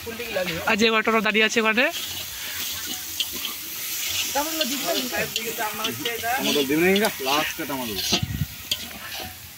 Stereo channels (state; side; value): identical; both; correlation 1.00